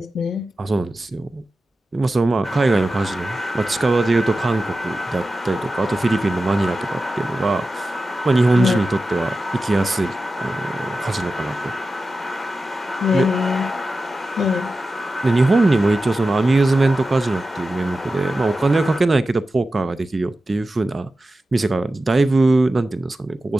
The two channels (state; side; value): normal; both; correlation 0.93